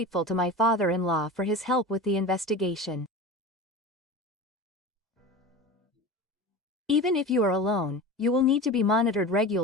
to my father-in-law for his help with the investigation. Even if you are alone, you will need to be monitored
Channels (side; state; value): both; normal; correlation 0.31